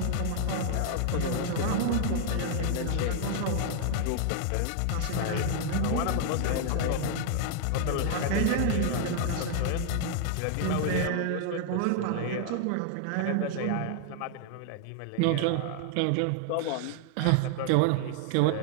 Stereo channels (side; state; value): both; different; correlation 0.00